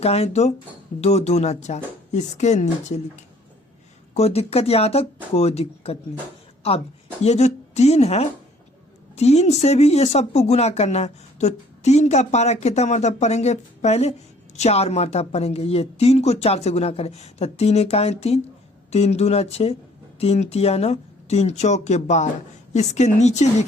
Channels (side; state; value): both; normal; correlation 0.58